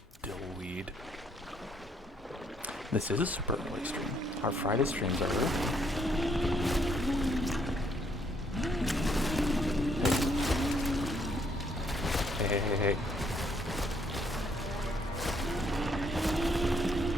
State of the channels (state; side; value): normal; both; correlation 0.70